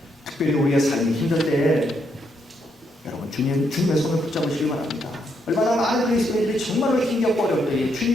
특별히 우리의 삶이 힘들 때 여러분, 주님의 손을 붙잡으시기 바랍니다. 얼마나 많은 그리스도인들이 정말로 힘겹고 어려울 때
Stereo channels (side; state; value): both; normal; correlation 0.77